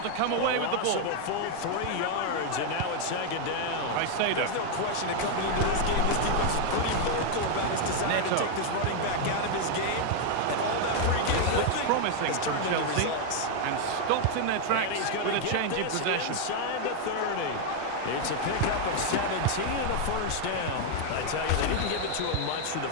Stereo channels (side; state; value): both; different; correlation 0.00